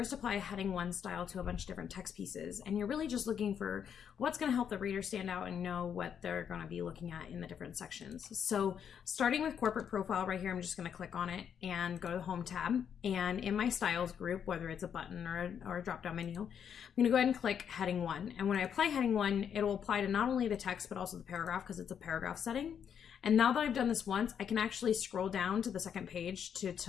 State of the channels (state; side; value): quieter; right; 8.1 dB